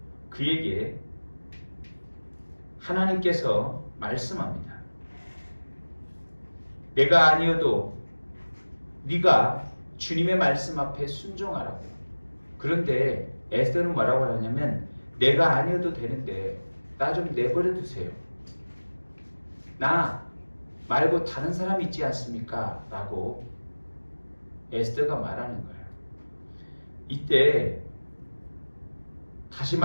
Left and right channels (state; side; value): inverted; both; correlation -1.00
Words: 그에게 하나님께서 말씀합니다. 내가 아니어도 네가 주님의 말씀 앞에 순종하라고. 그런데 에스더는 뭐라고 하냐면 내가 아니어도 되는데 나 좀 내버려 두세요. 나 말고 다른 사람 있지 않습니까? 라고 에스더가 말하는 거예요. 이때 다시